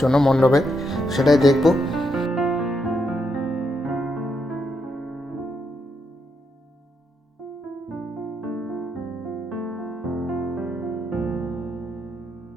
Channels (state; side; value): normal; both; correlation 0.80